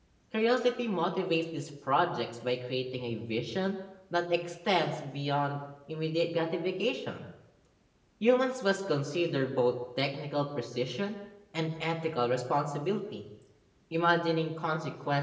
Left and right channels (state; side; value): identical; both; correlation 1.00